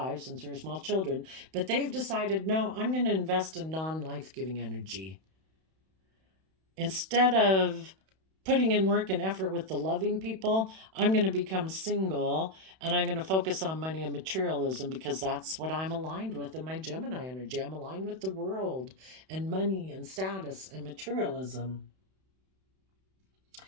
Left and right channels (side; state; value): left; late; 31 ms